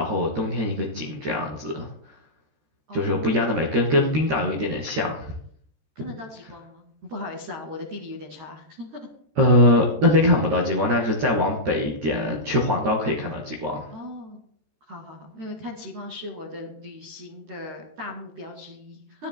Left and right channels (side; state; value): left; late; 13 ms